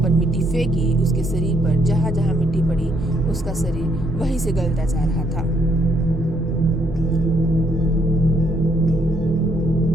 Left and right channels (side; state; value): both; normal; correlation 0.71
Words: मिट्टी फेंकी, उसके शरीर पर जहां जहां मिट्टी पड़ी उसका शरीर वहीं से गलता जा रहा था।